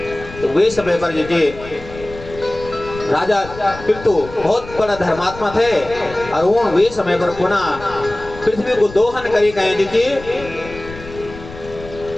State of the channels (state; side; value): noise; left; rumble, 15 dB below the sound